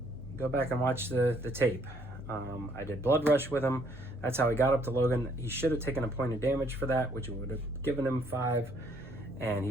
Go back and watch the tape. I did Blood Rush with him. That's how he got up to Logan. He should have taken a point of damage for that, which would have given him 5. And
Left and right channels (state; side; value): noise; right; hum, 26 dB below the sound